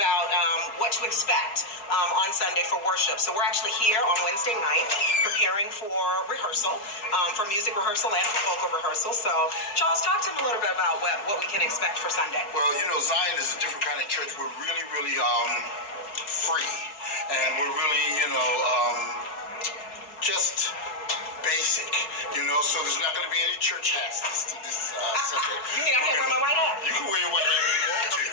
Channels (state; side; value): late; right; 4.3 ms